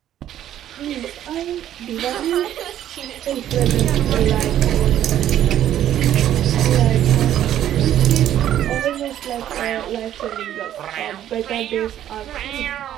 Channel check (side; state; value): left; quieter; 11.5 dB